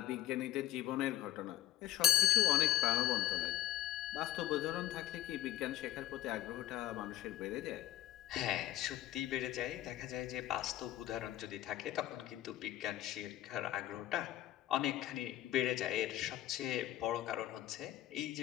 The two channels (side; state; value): right; quieter; 13.6 dB